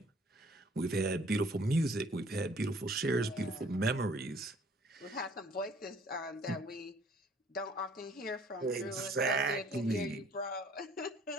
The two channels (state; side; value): normal; both; correlation 0.57